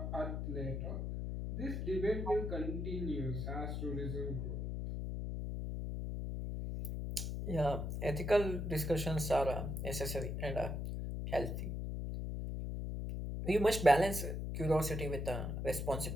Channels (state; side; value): noise; left; hum, 3 dB below the sound